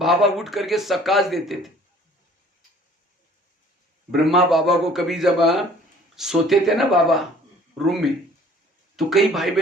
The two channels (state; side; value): normal; both; correlation 0.53